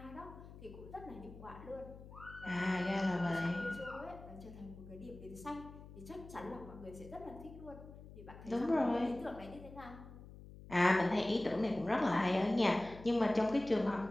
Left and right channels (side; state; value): left; noise; hum, 16 dB below the sound